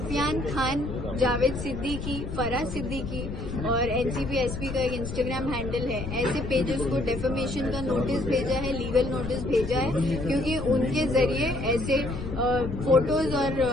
खान, जावेद सिद्दीकी, फराज सिद्दीकी और एनसीपी एसपी का एक इंस्टाग्राम हैंडल है, ऐसे पेजेस को डेफेमेशन का नोटिस भेजा है, लीगल नोटिस भेजा है, क्योंकि उनके जरिए ऐसे फोटोज और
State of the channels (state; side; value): noise; left; rumble, 7 dB below the sound